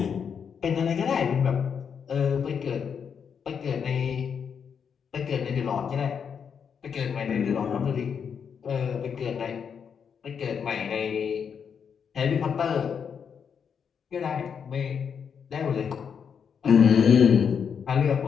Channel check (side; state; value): right; quieter; 7.0 dB